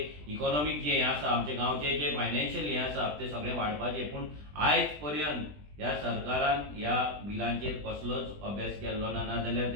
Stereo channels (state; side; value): late; left; 20 ms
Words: इकॉनॉमीक जे हें आसा, आमच्या गांवचे जे फायनान्शियल हें आसा तें सगळें वाडपाचें. पूण आयज पर्यंत ह्या सरकारान ह्या बिलांचेर कसलोच अभ्यास केल्लो ना, नाजाल्यार